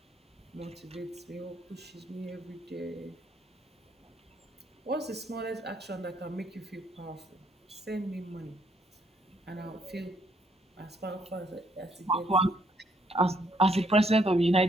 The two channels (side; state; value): both; normal; correlation 0.70